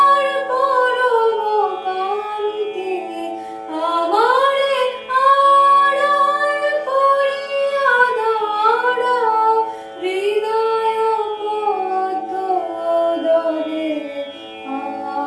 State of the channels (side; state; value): both; identical; correlation 1.00